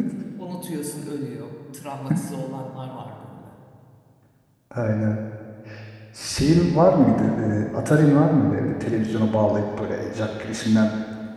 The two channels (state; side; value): identical; both; correlation 1.00